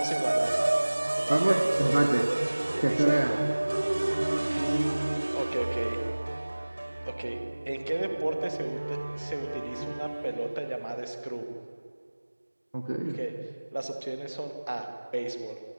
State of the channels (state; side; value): inverted; both; correlation -1.00